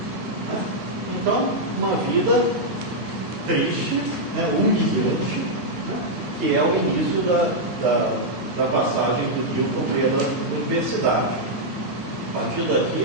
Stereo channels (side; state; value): both; normal; correlation -0.04